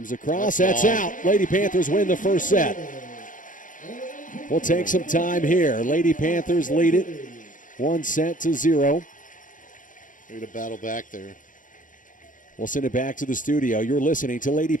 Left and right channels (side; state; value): right; late; 0.38 ms